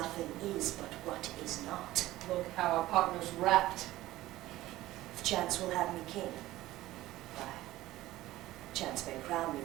is but what is not. Look how our partner's wrapped. If chance will have me king, why, chance may crown me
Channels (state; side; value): quieter; left; 16.4 dB